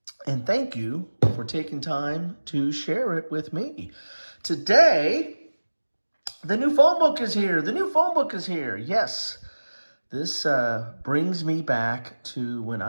thank you for taking time to share it with me. Today, the new phone book is here. The new phone book is here. Yes, this brings me back to when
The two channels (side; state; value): both; inverted; correlation -1.00